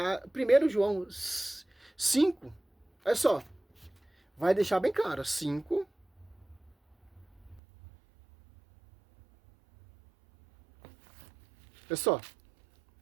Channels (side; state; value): left; drops out; at 7.6 s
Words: João 5, olha só, vai deixar bem claro, 5, olha só,